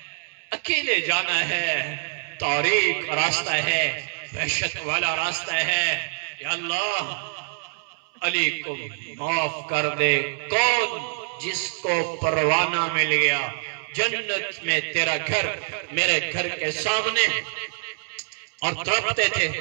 اکیلے جانا ہے، تاریک راستہ ہے، وحشت والا راستہ ہے، یا اللہ علی کو معاف کر دے۔ کون؟ جس کو پروانہ مل گیا جنت میں تیرا گھر میرے گھر کے سامنے، اور تڑپتے تھے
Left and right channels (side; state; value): left; silent; 61 dB below the other